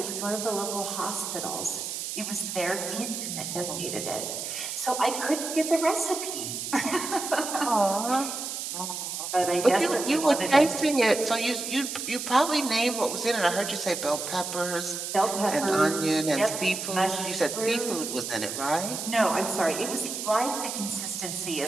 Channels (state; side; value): noise; right; hiss, 5 dB below the sound